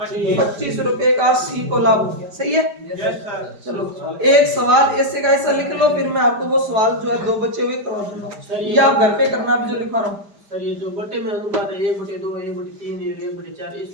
25 रुपए का सी को लाभ हो गया। सही है? चलो एक सवाल ऐसे का ऐसा लिख लो, फिर मैं आपको वो सवाल जो है 2 बचे हुए करवा दूंगा, ये आप घर पे करना भी जो लिखा रहा हूँ। सर ये जो बटे में अनुपात है 1/2 1/3 1/4,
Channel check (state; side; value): late; left; 5.0 ms